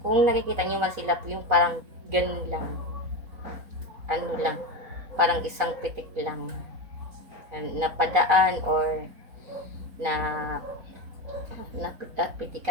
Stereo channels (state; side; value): late; left; 4.0 ms